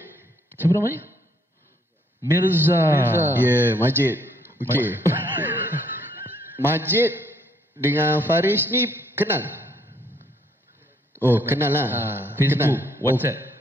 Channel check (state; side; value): normal; both; correlation 0.68